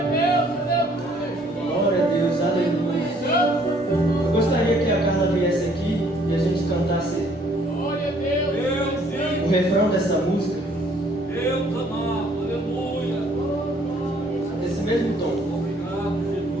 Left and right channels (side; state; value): both; normal; correlation 0.62